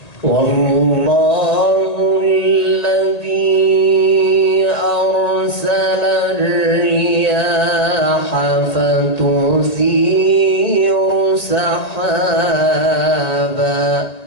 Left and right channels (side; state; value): right; late; 1.8 ms